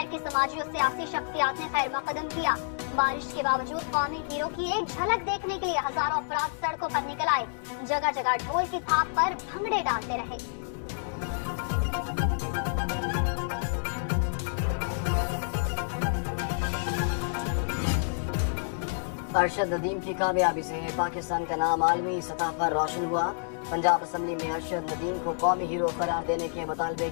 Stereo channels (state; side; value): silent; right; 59 dB below the other